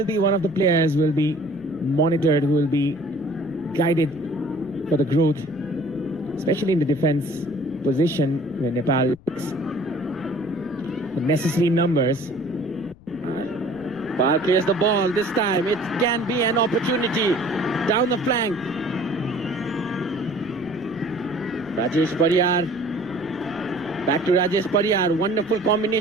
be one of the players who will be monitored, who will be guided for the growth, especially in the defense position where Nepal lacks the necessary numbers. Nepal clears the ball this time. It can be an opportunity down the flank. Rajesh Pariyar. Back to Rajesh Pariyar. Wonderful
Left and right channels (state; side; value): noise; left; rumble, 24 dB below the sound